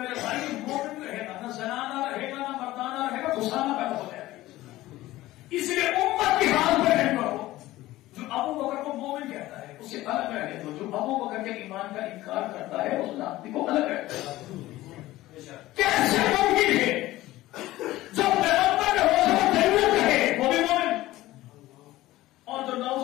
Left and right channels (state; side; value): quieter; right; 16.8 dB